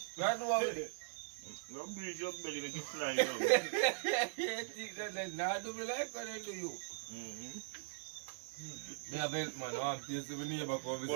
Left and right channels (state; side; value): silent; left; 51 dB below the other